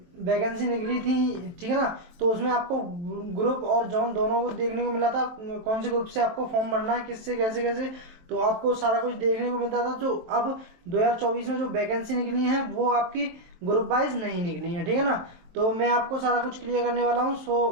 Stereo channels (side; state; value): left; late; 22 ms